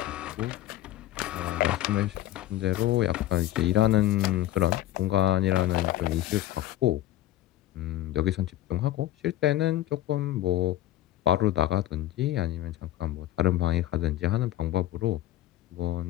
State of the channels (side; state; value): right; quieter; 14.1 dB